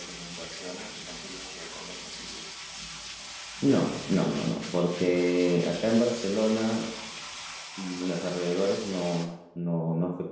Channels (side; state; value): both; identical; correlation 1.00